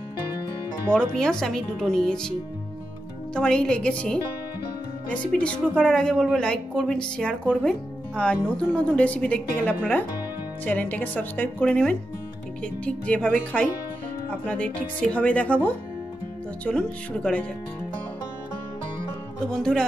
বড় পেঁয়াজ আমি 2টো নিয়েছি। তো আমার এই লেগেছে। রেসিপিটি শুরু করার আগে বলবো লাইক করবেন, শেয়ার করবেন, আর নতুন নতুন রেসিপি দেখতে গেলে আপনারা চ্যানেলটাকে সাবস্ক্রাইব করে নেবেন। ঠিক যেভাবে খাই আপনাদের ঠিক সেভাবে দেখাবো। তো চলুন শুরু করা যাক। তো বন্ধুরা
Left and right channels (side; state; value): both; normal; correlation 0.88